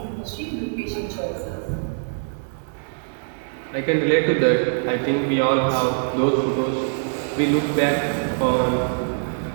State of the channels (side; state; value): left; silent; digital silence